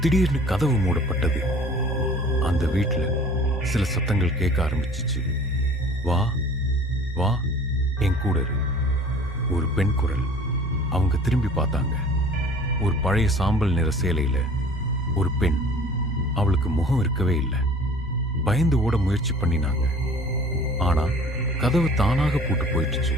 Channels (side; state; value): both; normal; correlation 0.48